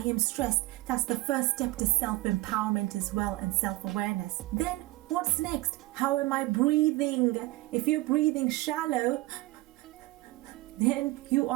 am stressed. That's the first step to self-empowerment as well, and self-awareness. Then what's next? How am I breathing? If you're breathing shallow, then you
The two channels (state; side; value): quieter; left; 19.6 dB